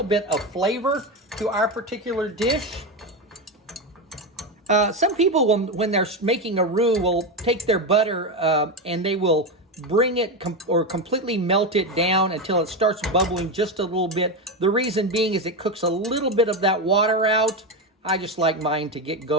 bit of flavor to our particular dish. Some people, when they're making a roux, will take their butter and they will bring it completely melt it down until it starts bubbling just a little bit. The reason being is it cooks a little bit of that water out. I just like mine to get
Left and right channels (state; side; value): normal; both; correlation 0.14